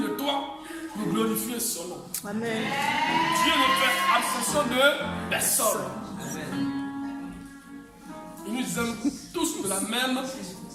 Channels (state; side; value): identical; both; correlation 1.00